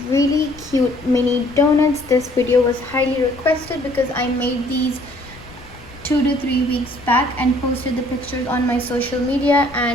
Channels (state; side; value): noise; left; rumble, 20 dB below the sound